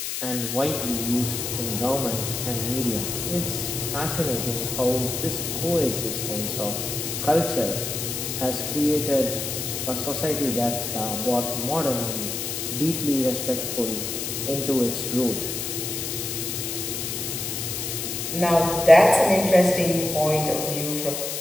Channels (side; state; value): left; noise; hiss, 4 dB below the sound